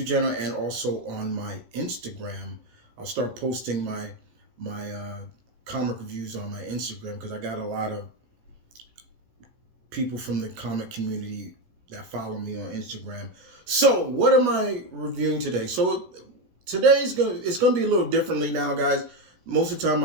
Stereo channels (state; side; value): late; left; 17 ms